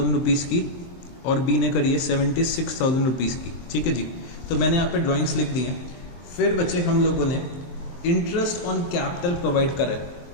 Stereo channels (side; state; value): right; late; 23 ms